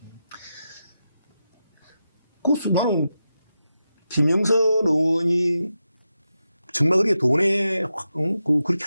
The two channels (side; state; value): both; inverted; correlation -0.89